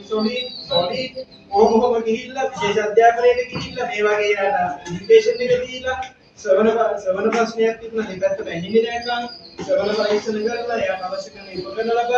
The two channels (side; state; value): both; identical; correlation 1.00